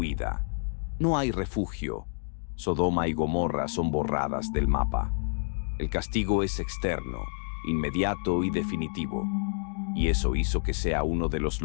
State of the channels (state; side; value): silent; right; digital silence